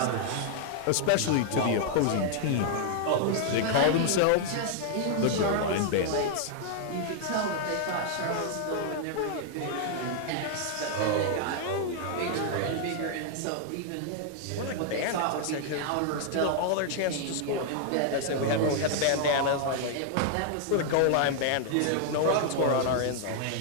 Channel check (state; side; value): different; both; correlation 0.00